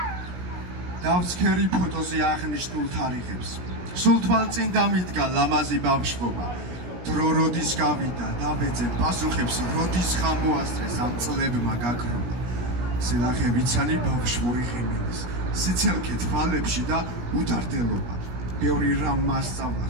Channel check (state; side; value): late; left; 17 ms